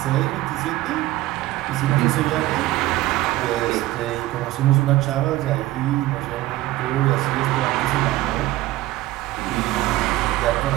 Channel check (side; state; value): left; quieter; 16.6 dB